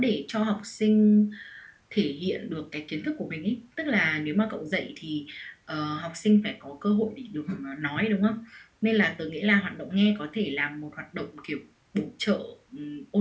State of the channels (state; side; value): identical; both; correlation 1.00